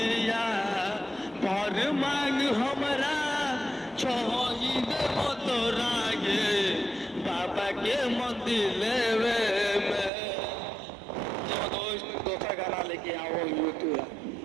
पर मांग हमरा छोई देव तोरा गे बाबा के मंदिर लेवे में दूसरा गाना लेके आओ यूट्यूब।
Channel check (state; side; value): drops out; left; at 10.1 s